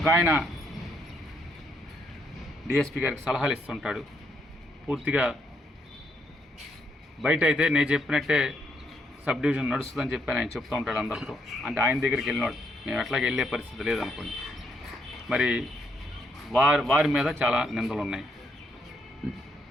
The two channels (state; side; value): normal; both; correlation 0.75